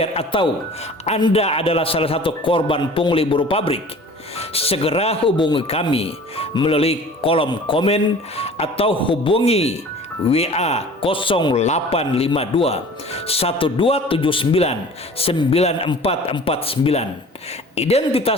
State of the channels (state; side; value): normal; both; correlation 0.44